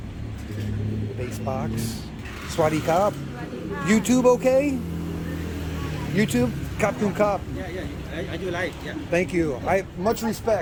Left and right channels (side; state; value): both; identical; correlation 1.00